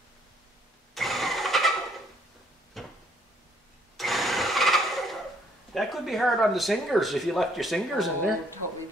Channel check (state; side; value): normal; both; correlation 0.65